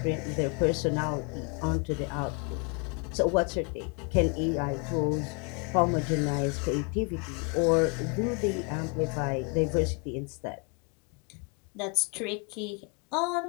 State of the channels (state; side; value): quieter; right; 34.9 dB